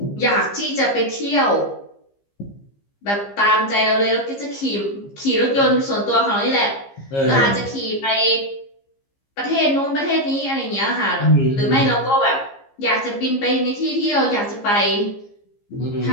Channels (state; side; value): late; right; 15 ms